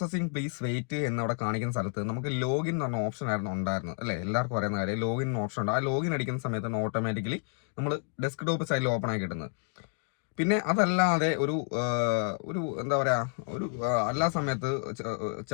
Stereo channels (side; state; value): right; quieter; 39.8 dB